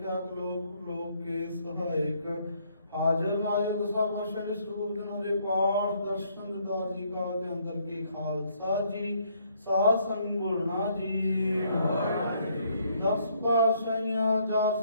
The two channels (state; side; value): inverted; both; correlation -0.68